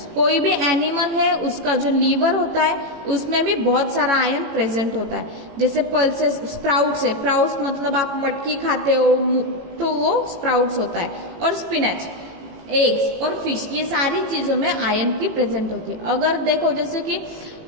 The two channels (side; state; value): left; late; 18 ms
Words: कोई भी एनिमल है उसका जो लीवर होता है उसमें भी बहुत सारा आयरन प्रेजेंट होता है। जैसे पल्सेस, स्प्राउट्स है, स्प्राउट्स मतलब आप मटकी खाते हो तो वो स्प्राउट्स होता है, और स्पिनच, एग्स और फिश, ये सारी चीजों में आयरन की प्रेजेंट होती है। अगर देखो जैसे कि